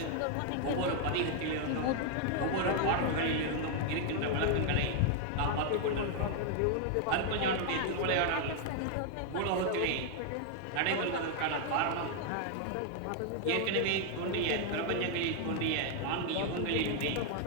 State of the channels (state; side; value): different; both; correlation 0.00